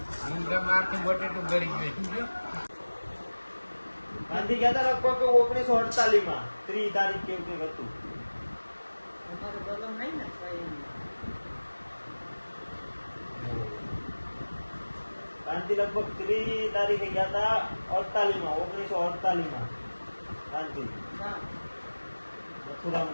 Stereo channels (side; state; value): both; inverted; correlation -1.00